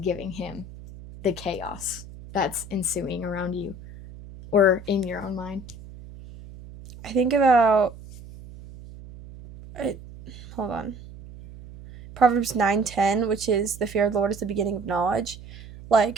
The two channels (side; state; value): right; noise; hum, 16 dB below the sound